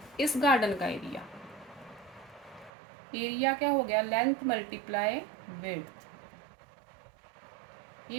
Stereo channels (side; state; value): left; drops out; at 2.7 s